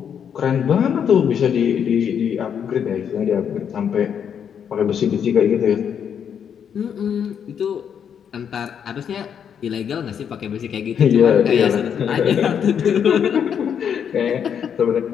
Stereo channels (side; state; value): right; quieter; 8.0 dB